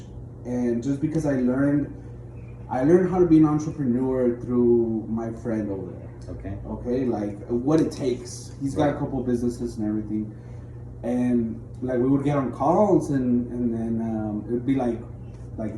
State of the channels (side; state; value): both; identical; correlation 1.00